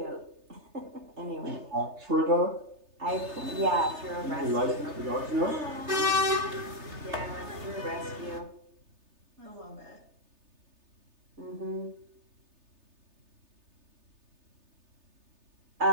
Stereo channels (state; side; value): late; left; 3.3 ms